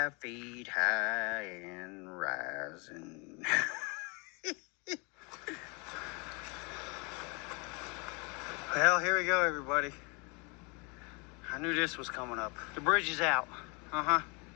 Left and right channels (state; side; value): quieter; right; 31.5 dB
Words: feet high and rising. Well, here we go, everybody. I knew this was coming up. The bridge is out.